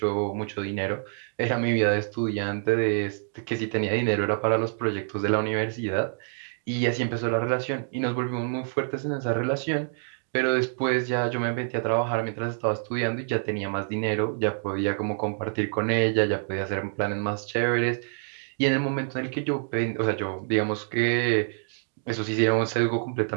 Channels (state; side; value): silent; left; digital silence